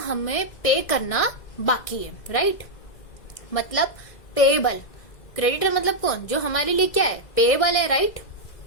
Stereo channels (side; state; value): right; late; 2.0 ms